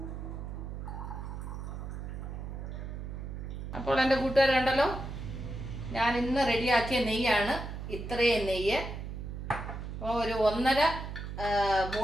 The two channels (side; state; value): right; noise; hum, 7 dB below the sound